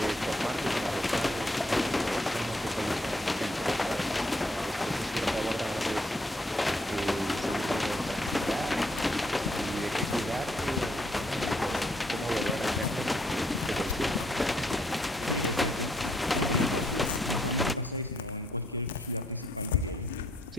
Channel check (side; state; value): both; normal; correlation 0.71